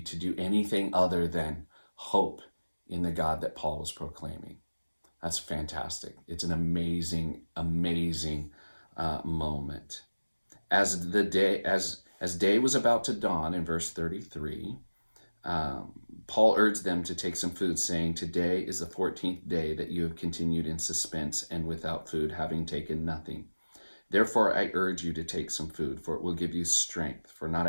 do anything other than hope in the God that Paul was proclaiming. That's fantastic. It's an amazing, amazing moment. As day was about to dawn, in verse 33, Paul urged them to take some food, saying, "Today is the 14th day that you have continued in suspense and without food, having taken nothing. Therefore I urge you to take some food, for it will give you strength, for not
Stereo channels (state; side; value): inverted; both; correlation -1.00